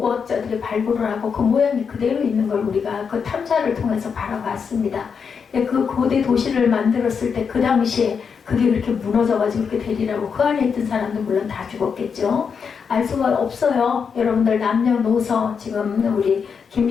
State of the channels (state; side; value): quieter; right; 6.2 dB